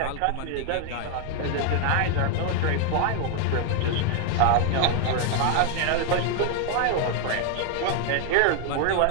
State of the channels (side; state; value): both; different; correlation 0.00